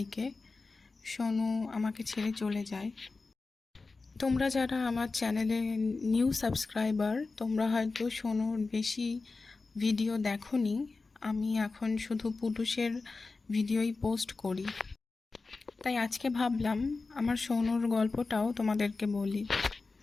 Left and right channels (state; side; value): quieter; right; 3.9 dB